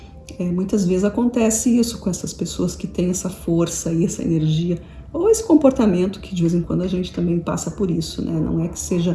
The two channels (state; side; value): identical; both; correlation 1.00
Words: Muitas vezes acontece isso com essas pessoas que têm essa força e essa energia, ou esse comportamento que de vez em quando a gente também passa por isso, né? Não é que